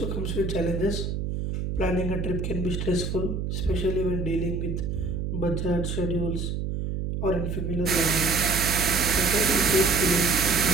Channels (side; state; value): right; noise; hum, 3 dB below the sound